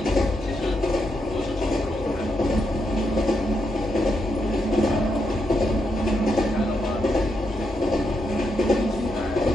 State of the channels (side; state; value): both; normal; correlation 0.82